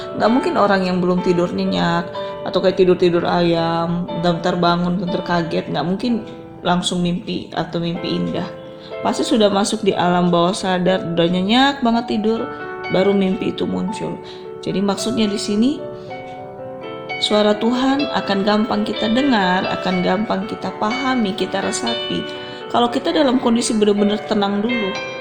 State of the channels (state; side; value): identical; both; correlation 1.00